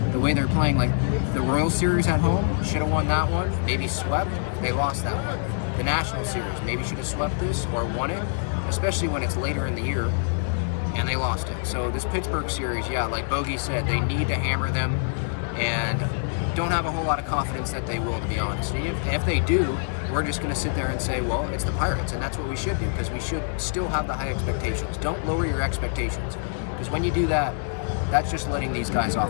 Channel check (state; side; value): silent; right; 57 dB below the other